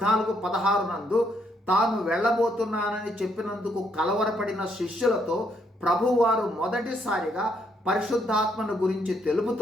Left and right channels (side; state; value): both; normal; correlation 0.73